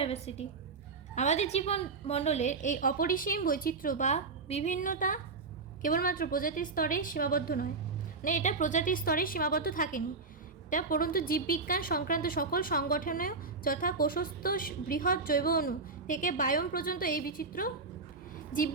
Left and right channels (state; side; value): quieter; left; 4.2 dB